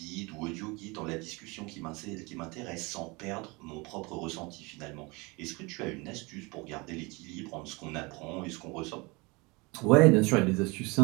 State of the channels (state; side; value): quieter; left; 26.2 dB